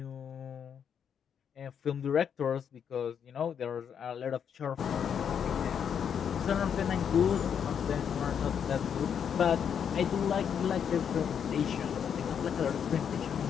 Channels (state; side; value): quieter; right; 7.9 dB